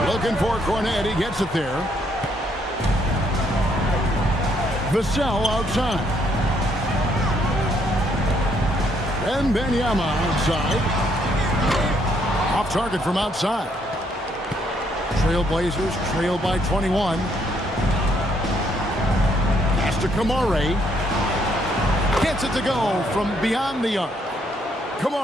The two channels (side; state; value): both; normal; correlation 0.71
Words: Looking for Cornet. He gets it there. Vassell outside. Wembanyama outside. Off target from outside. Trailblazers trail by 21. Pass to Kamara. Gets it to go from beyond the arc.